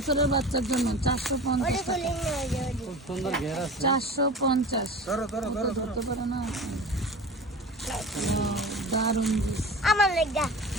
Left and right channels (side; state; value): both; normal; correlation 0.36